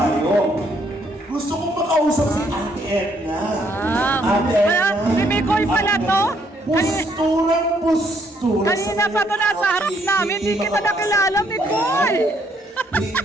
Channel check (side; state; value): both; normal; correlation 0.70